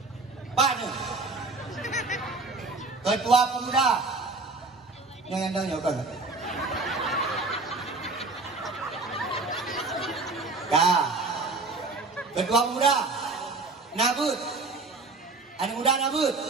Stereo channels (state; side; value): quieter; left; 3.7 dB